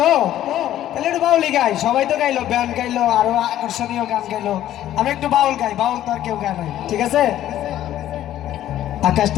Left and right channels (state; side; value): quieter; right; 12.5 dB